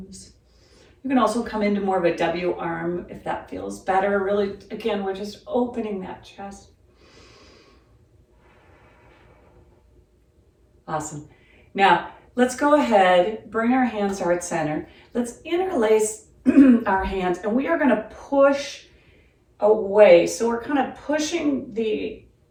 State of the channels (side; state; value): both; identical; correlation 1.00